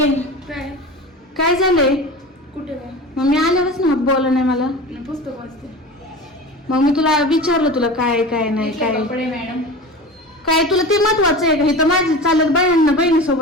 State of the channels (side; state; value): both; normal; correlation 0.32